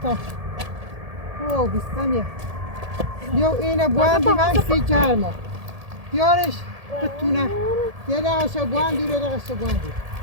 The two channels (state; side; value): late; left; 1.7 ms